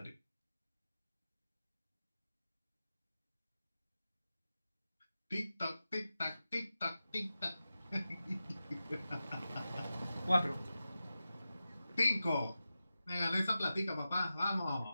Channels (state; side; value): inverted; both; correlation -0.93